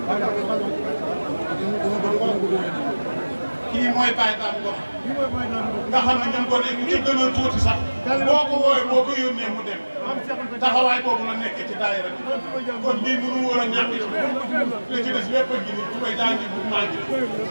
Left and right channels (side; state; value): both; inverted; correlation -1.00